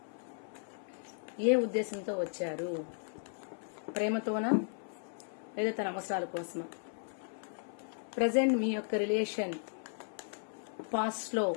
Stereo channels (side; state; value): right; silent; 54 dB below the other